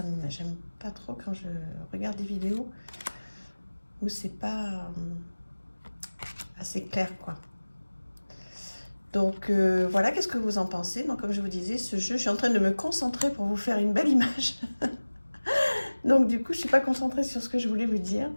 j'aime pas trop quand je regarde des vidéos où c'est pas assez clair, quoi. Donc voilà, qu'est-ce que vous en pensez? Donc comme je vous disais, ce jeu, je suis en train de me concentrer pour vous faire une belle image. Donc du coup, je suis pas concentrée sur ce que je voulais vous dire.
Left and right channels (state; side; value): inverted; both; correlation -1.00